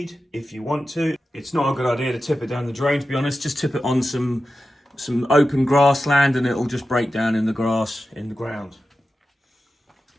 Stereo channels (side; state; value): both; normal; correlation 0.92